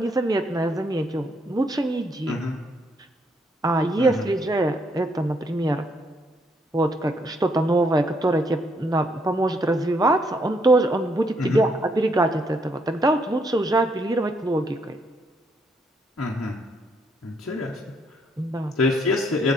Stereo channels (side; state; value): both; normal; correlation 0.72